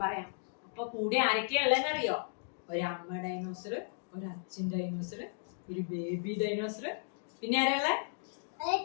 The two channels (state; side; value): silent; right; digital silence